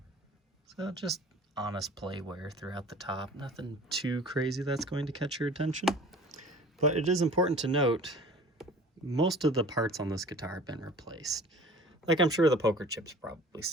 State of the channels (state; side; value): normal; both; correlation 0.45